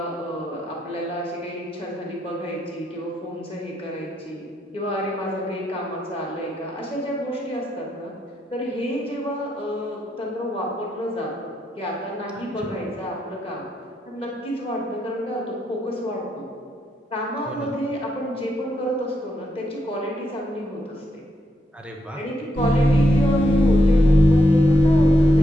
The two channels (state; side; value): normal; both; correlation 0.80